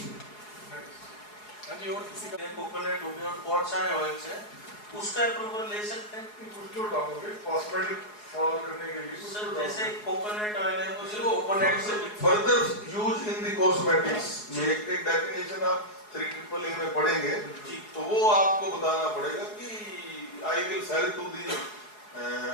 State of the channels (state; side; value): late; right; 4.8 ms